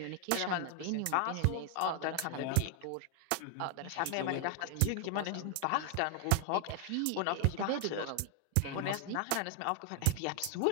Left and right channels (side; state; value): both; different; correlation 0.00